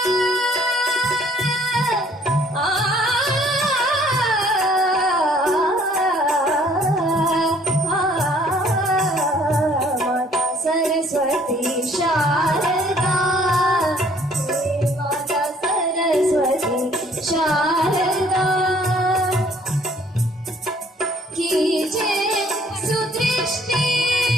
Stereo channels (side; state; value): both; normal; correlation 0.59